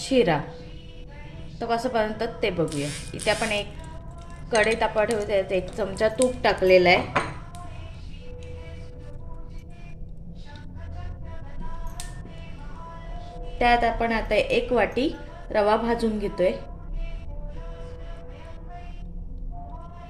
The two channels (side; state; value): both; identical; correlation 1.00